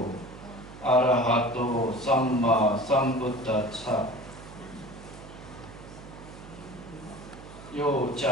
arahato samma sambuddhassa. Yo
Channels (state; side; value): noise; right; hum, 16 dB below the sound